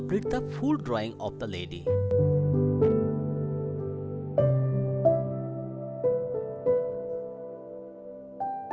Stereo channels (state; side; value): identical; both; correlation 1.00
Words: the full drawing of the lady.